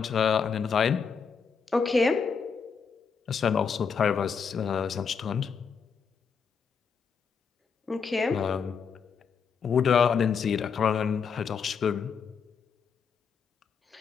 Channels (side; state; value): right; quieter; 6.1 dB